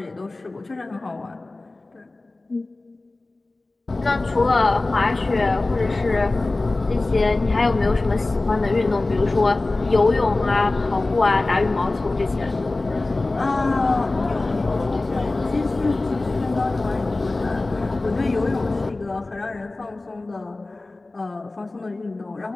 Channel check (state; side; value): quieter; right; 3.1 dB